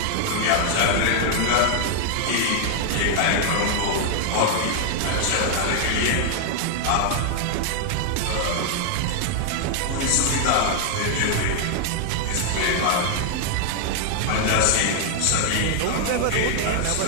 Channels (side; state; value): both; different; correlation 0.00